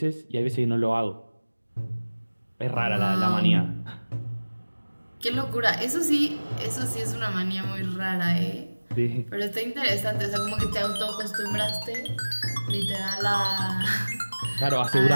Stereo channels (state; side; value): inverted; both; correlation -1.00